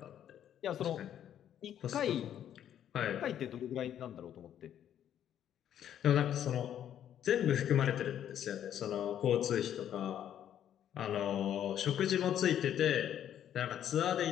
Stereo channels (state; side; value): quieter; right; 10.3 dB